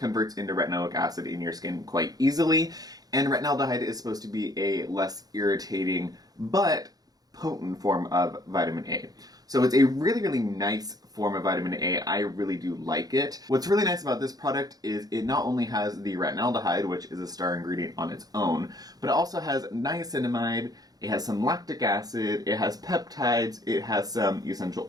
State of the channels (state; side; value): late; left; 0.18 ms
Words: into retinoic acid in your skin quite easily. And retinaldehyde is supposed to be a less irritating but potent form of vitamin A. So it's a really nice form of vitamin A. I really do like it. What's really nice about this product is it not only has the retinaldehyde, which is a star ingredient on its own, but it also has niacinamide, it has some lactic acid, it has peptides, it has some essential